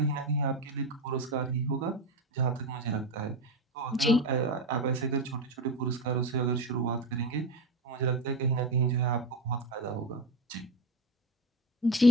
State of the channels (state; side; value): normal; both; correlation 0.25